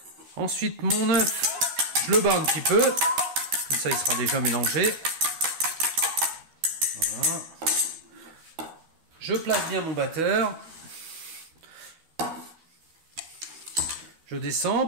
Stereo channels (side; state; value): left; late; 12 ms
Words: Ensuite mon œuf, je le bats un petit peu, comme ça il sera déjà mélangé. Voilà. Je place bien mon batteur. Je descends.